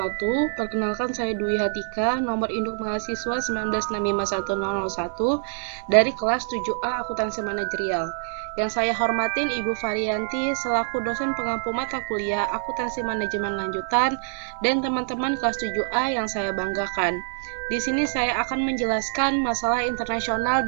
Perkenalkan saya Dwi Hatika, nomor induk mahasiswa 19651001 dari kelas 7A Akuntansi Manajerial. Yang saya hormatin Ibu Varianti selaku dosen pengampu mata kuliah Akuntansi Manajemen Lanjutan dan teman-teman kelas 7A yang saya banggakan. Di sini saya akan menjelaskan masalah internasional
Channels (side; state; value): left; silent; digital silence